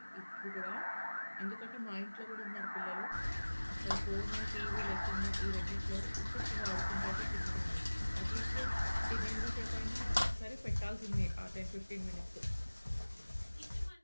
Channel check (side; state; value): both; inverted; correlation -1.00